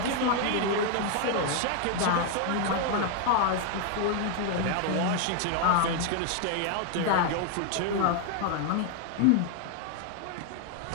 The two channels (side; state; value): both; different; correlation 0.00